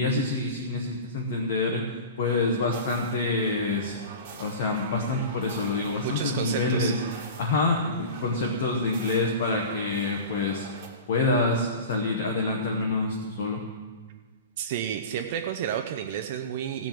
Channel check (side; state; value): both; inverted; correlation -0.33